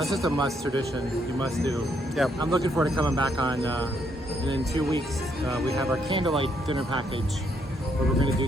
just a must tradition. You must do. Yep. I'm looking forward to coming back on. And in 2 weeks, we have our candlelight dinner package, where we're going to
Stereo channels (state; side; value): normal; both; correlation 0.73